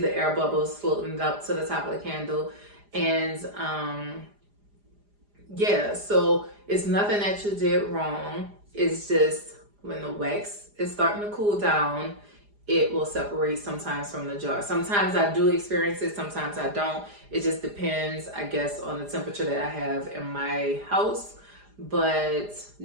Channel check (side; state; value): left; late; 4.9 ms